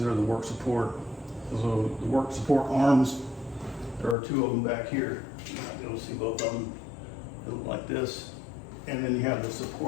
are the work support. So the work support arms, there are 2 of them back here. You might be able to see both of them. They look like this. And then you have the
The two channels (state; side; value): drops out; right; at 4.2 s